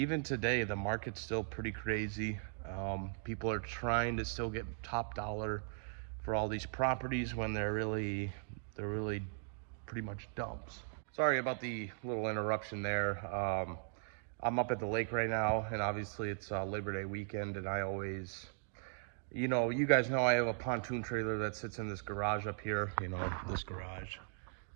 today the market's still pretty crazy. People are trying to still get top dollar for all these properties when they're really pretty much dumps. Sorry about the little interruption there. I'm up at the lake right now, and obviously it's Labor Day weekend, and I always, you guys know I have a pontoon trailer that sits in this garage up here, this garage.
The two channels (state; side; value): silent; left; digital silence